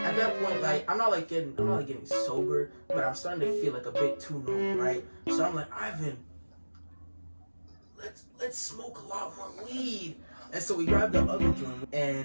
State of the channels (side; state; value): both; inverted; correlation -1.00